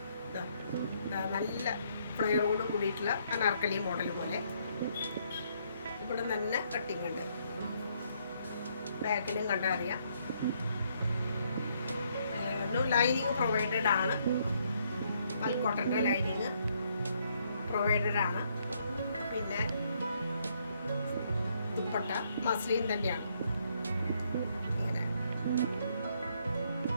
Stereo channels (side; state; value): both; inverted; correlation -0.71